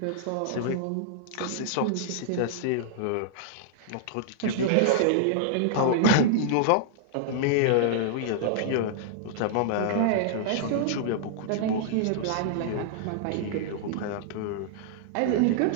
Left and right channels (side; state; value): both; different; correlation -0.01